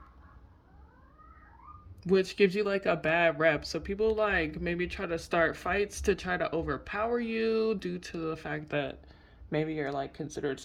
which gives you like a bad rep. So people like maybe try to start fights to try to overpower you due to the fact that maybe you're like considered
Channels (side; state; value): both; identical; correlation 1.00